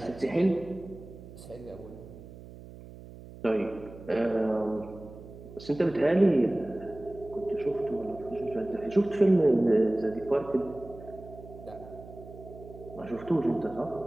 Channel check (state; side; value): noise; right; hum, 16 dB below the sound